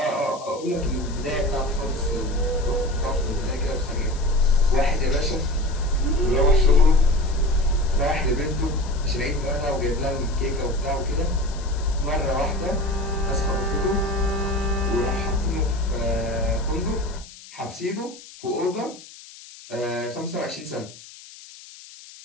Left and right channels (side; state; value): left; noise; hiss, 18 dB below the sound